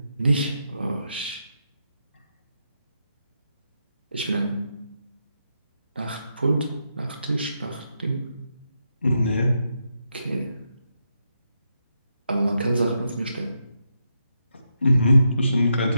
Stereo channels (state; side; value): inverted; both; correlation -0.83